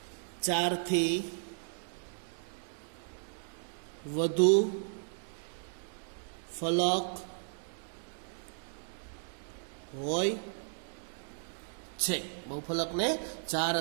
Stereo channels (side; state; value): left; silent; digital silence